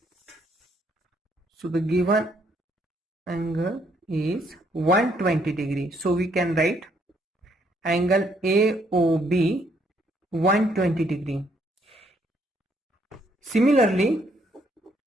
So the given angle is 120 degree. So we can write angle AOB 120 degree. Similarly,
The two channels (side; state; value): both; normal; correlation 0.70